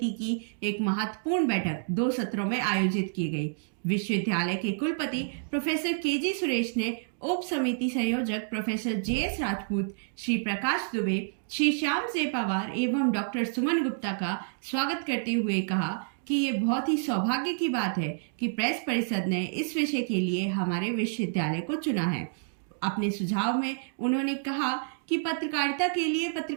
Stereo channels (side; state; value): left; silent; digital silence